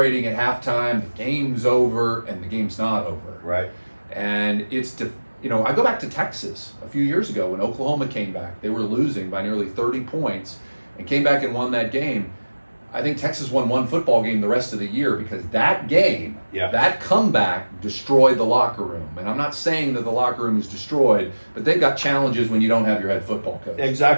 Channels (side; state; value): both; inverted; correlation -1.00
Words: at halftime, the game's over, and the game's not over. Right. And I go back to Texas a few years ago when Oklahoma came back. They were losing by nearly 30 points and came back and won that game. I think Texas won one football game the rest of the year because that game, that comeback destroyed the locker room. And I'm not saying that the locker room is destroyed, but they've got challenges when you don't have your head football coach.